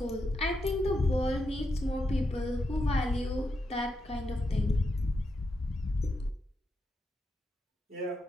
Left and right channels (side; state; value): both; normal; correlation 0.84